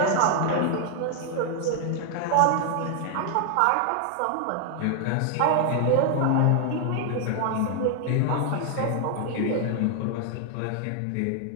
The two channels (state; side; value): different; both; correlation 0.00